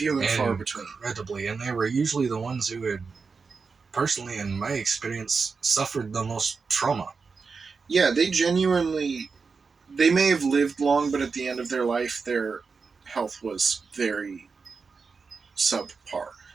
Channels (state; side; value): quieter; left; 4.9 dB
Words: and far between. Incredibly, and they were usually the ones who had, personally, in my experience, suffered the most trauma. Yeah, they may have lived long, but at the end of their life, their health was very subpar.